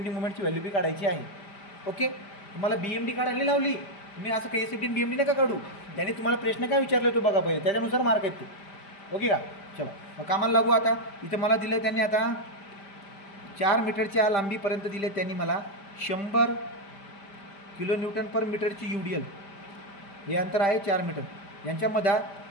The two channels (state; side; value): late; right; 5.0 ms